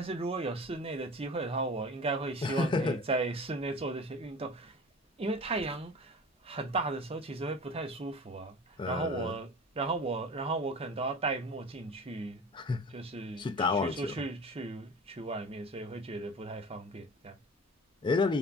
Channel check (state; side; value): normal; both; correlation 0.38